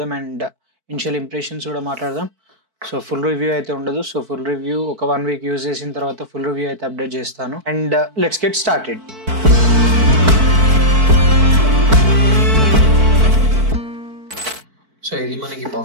అండ్ ఇనిషియల్ ఇంప్రెషన్స్ కూడా మాట్లాడదాం. సో ఫుల్ రివ్యూ అయితే ఉండదు. సో ఫుల్ రివ్యూ ఒక 1 వీక్ యూజ్ చేసిన తర్వాత ఫుల్ రివ్యూ అయితే అప్డేట్ చేస్తాను. And let's get started. So ఇది మనకి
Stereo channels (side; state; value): left; late; 4.5 ms